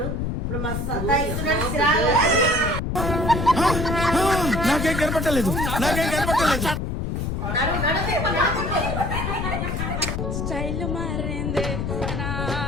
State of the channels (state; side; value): noise; left; rumble, 2 dB below the sound